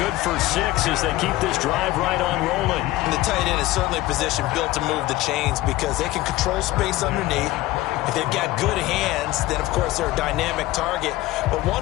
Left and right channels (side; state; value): right; quieter; 17.4 dB